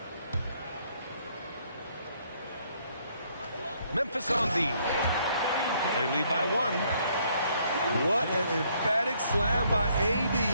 Memphis on the. They lead by 1. What an emphatic slam by AD.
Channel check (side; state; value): both; inverted; correlation -0.68